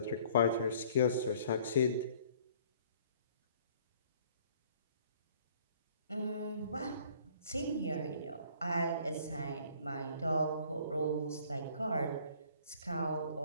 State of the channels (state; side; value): inverted; both; correlation -0.56